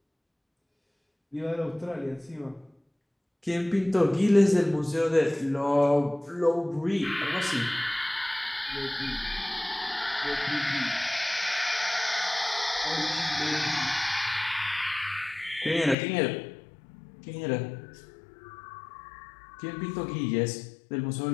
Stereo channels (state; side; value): drops out; right; at 16.0 s